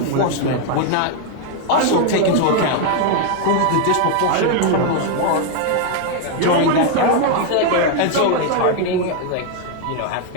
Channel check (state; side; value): different; both; correlation 0.00